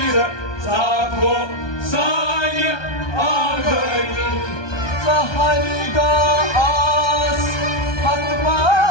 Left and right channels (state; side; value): late; right; 1.2 ms